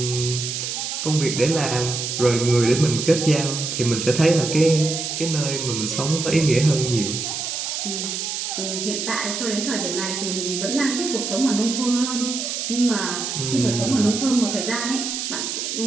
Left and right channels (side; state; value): right; noise; hiss, 3 dB below the sound